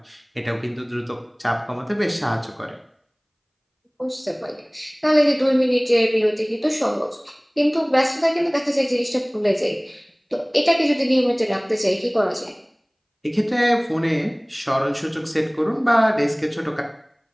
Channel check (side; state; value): both; identical; correlation 1.00